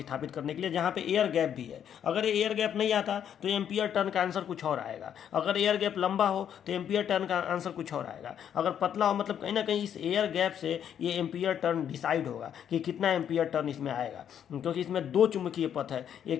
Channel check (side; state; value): right; quieter; 9.1 dB